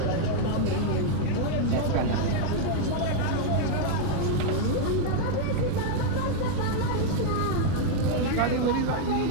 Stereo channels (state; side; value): different; both; correlation 0.00